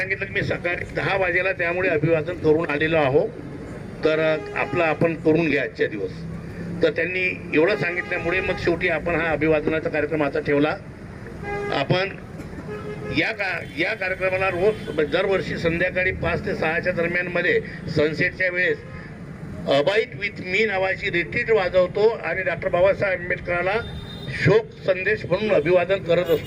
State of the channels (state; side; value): identical; both; correlation 1.00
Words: की मी सकाळी 10 वाजेला त्यामुळे अभिवादन करून आलेलो आहो, तर आपण करून घ्या आजच्या दिवस. तर त्यांनी एवढं सांगितल्यामुळे मग शेवटी आपण हा अभिवादनाचा कार्यक्रम आता ठेवला. आपण या कार्यक्रमाला रोज दरवर्षी संध्याकाळी 5 ते 6च्या दरम्यानमध्ये सनसेटच्या वेळेस अबाईट विथ मी नावाची रिट्रीट वाजवतो आणि डॉक्टर बाबासाहेब आंबेडकरांना शोक संदेश म्हणून अभिवादन करत